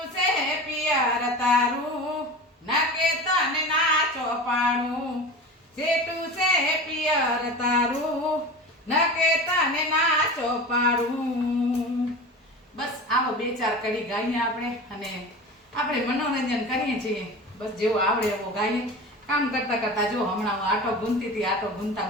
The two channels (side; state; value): both; normal; correlation 0.32